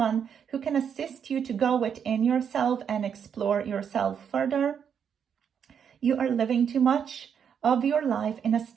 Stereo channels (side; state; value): left; quieter; 7.7 dB